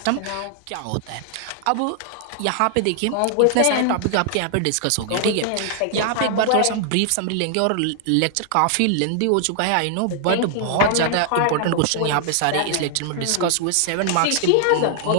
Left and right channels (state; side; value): different; both; correlation -0.01